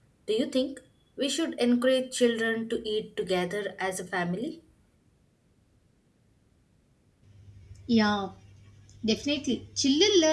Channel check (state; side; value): identical; both; correlation 1.00